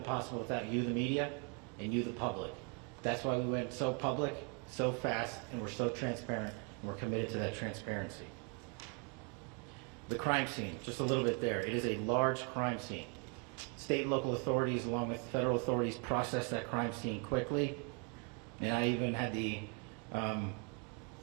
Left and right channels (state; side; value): quieter; left; 37.0 dB